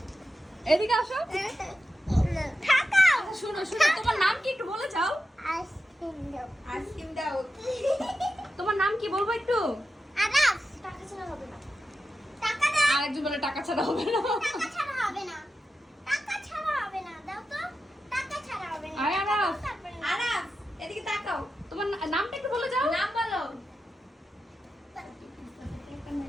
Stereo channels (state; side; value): normal; both; correlation 0.91